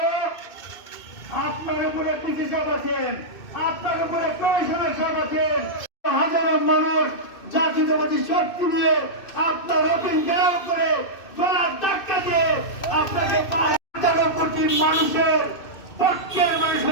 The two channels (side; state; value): right; late; 2.6 ms